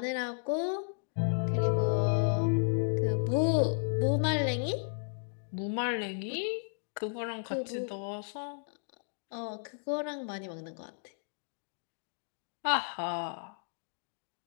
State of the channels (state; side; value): silent; right; digital silence